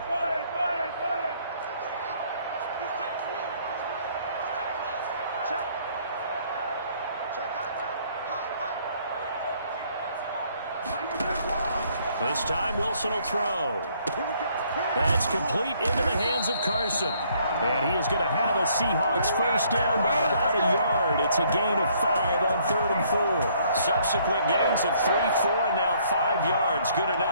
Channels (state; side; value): inverted; both; correlation -0.65